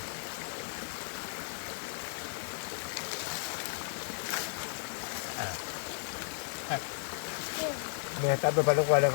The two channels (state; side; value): silent; right; 55 dB below the other